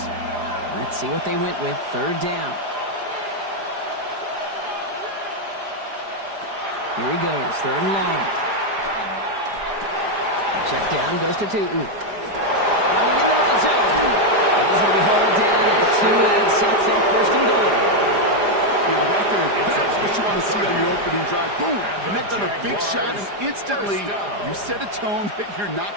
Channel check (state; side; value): late; left; 4.9 ms